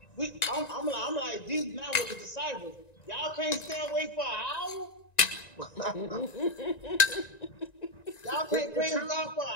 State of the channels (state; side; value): late; right; 1.9 ms